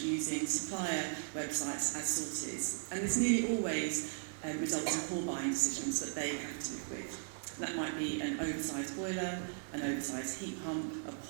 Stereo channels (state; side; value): silent; left; digital silence